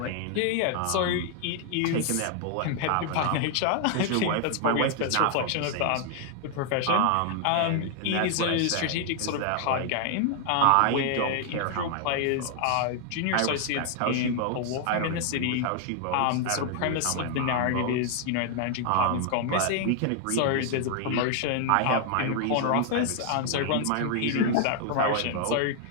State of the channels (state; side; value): different; both; correlation 0.00